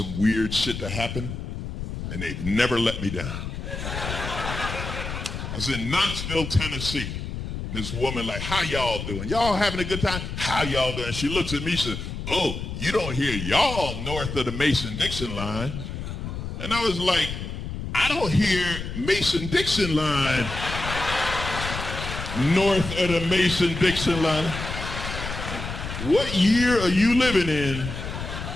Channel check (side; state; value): left; noise; rumble, 6 dB below the sound